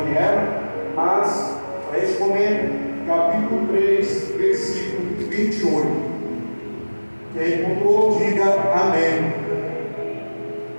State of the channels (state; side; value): inverted; both; correlation -1.00